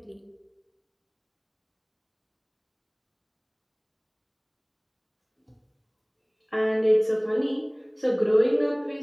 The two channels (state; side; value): identical; both; correlation 1.00